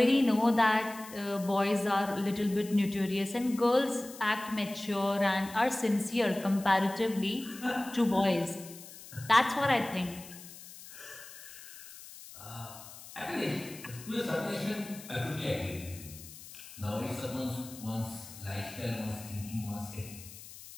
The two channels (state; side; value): noise; left; hiss, 16 dB below the sound